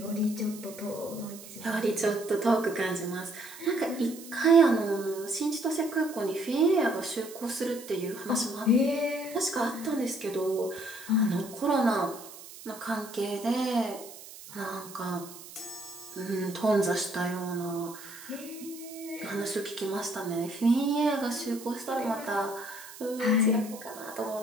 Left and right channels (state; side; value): noise; right; hiss, 16 dB below the sound